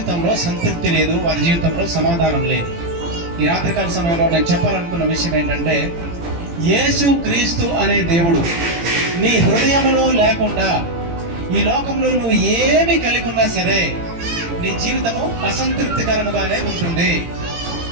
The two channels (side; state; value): left; late; 18 ms